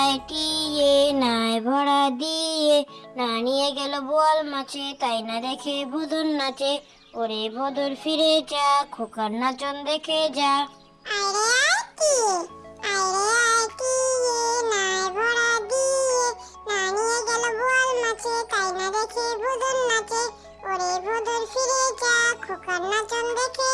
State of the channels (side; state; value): both; identical; correlation 1.00